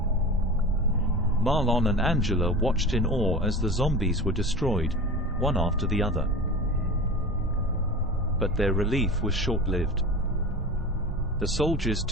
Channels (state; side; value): normal; both; correlation 0.32